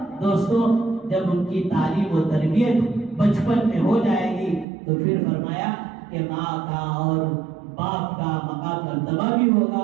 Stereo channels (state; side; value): drops out; left; at 4.7 s